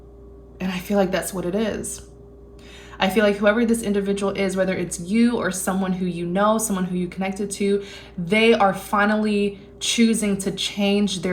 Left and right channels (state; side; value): identical; both; correlation 1.00